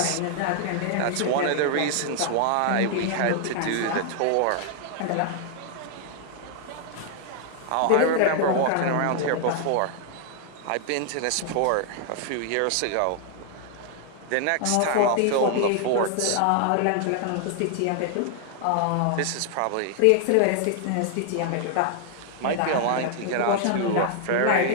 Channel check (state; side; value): different; both; correlation 0.00